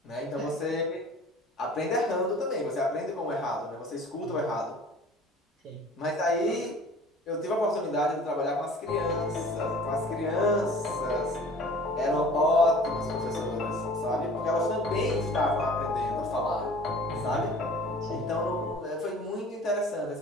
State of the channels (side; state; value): both; normal; correlation 0.46